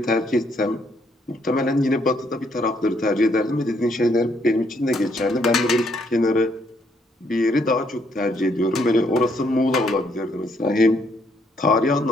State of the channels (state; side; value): normal; both; correlation 0.71